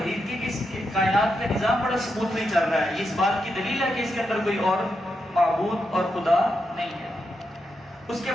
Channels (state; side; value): normal; both; correlation 0.85